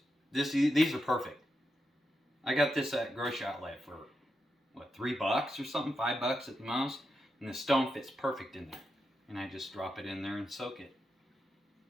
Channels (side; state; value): both; normal; correlation 0.86